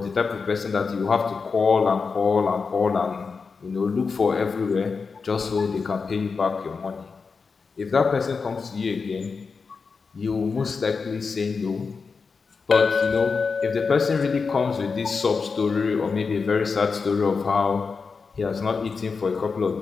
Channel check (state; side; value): quieter; right; 4.9 dB